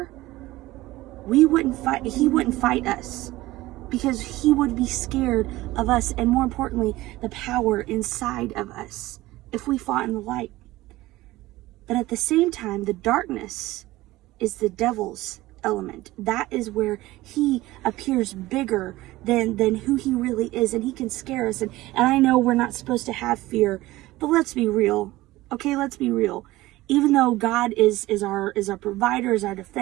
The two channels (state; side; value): quieter; left; 18.0 dB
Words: he wouldn't fight us, because he would be scared of us, and more importantly, the power inside of us, if we fought in the light. But at the same time, the darkness is the devil's element. That is where he appears bigger than who he really is, and he can scare us. And I know we're not supposed to have fear, but let's be real. Okay, let's be real. Even though God is our provider, is our